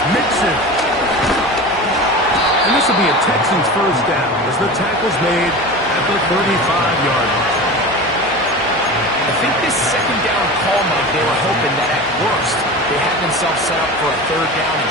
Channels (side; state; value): both; normal; correlation 0.31